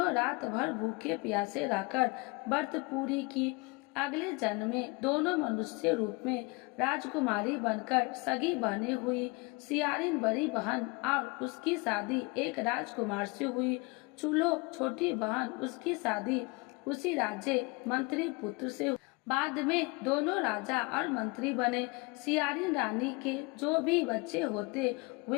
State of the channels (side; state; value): right; quieter; 27.6 dB